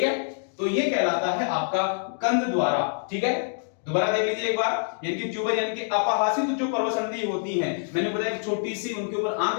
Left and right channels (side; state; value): right; silent; digital silence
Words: है। तो ये कहलाता है आपका कंद द्वारा, ठीक है। दोबारा देख लीजिए एक बार, यानी कि ट्यूबर यानी कि अपहासित जो पर्वसंधि होती हैं, मैंने बताया कि छोटी सी उनके ऊपर